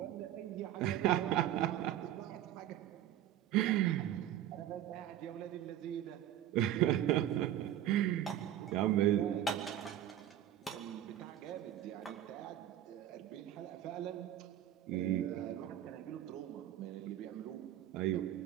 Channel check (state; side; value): quieter; left; 11.9 dB